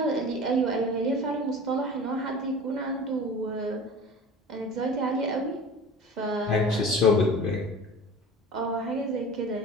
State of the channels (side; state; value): both; normal; correlation 0.38